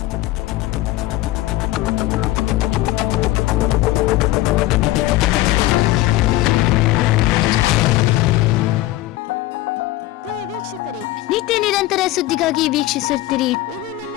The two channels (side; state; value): right; quieter; 16.7 dB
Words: ಪ್ರಿಯ ವೀಕ್ಷಕರೇ, ನಿತ್ಯ ನಿರಂತರ ಸುದ್ದಿಗಾಗಿ ವೀಕ್ಷಿಸುತ್ತೀರಿ. ಇದು